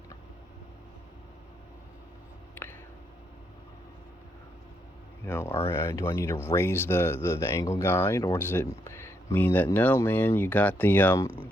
Or do I need to raise the angle guide, or does it mean that no, man, you got the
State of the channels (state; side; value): normal; both; correlation 0.77